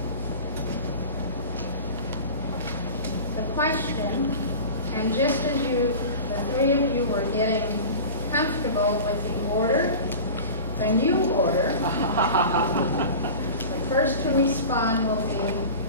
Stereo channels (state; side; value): inverted; both; correlation -0.35